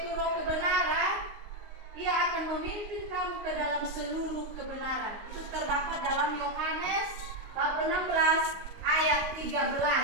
Roh kebenaran, Ia akan memimpin kamu ke dalam seluruh kebenaran. Itu terdapat dalam Yohanes bab 16 ayat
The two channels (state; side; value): late; left; 19 ms